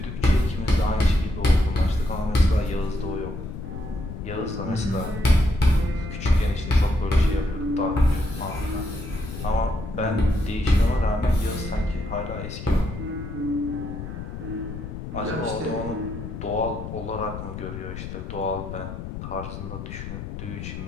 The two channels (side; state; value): left; noise; rumble, 8 dB below the sound